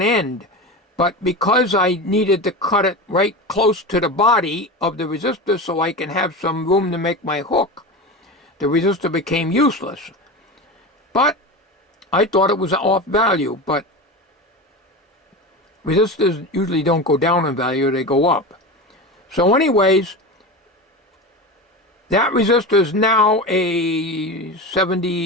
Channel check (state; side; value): normal; both; correlation 0.25